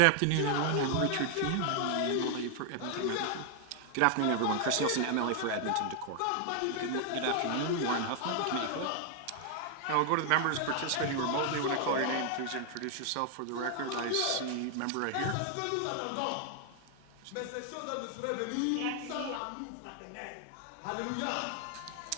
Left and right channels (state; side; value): different; both; correlation 0.00